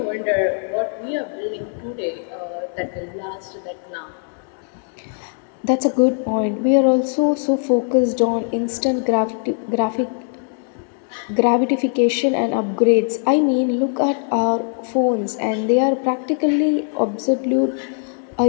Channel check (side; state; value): right; silent; 56 dB below the other